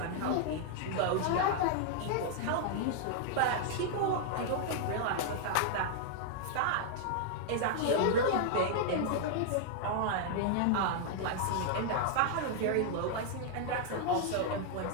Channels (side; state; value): both; different; correlation 0.00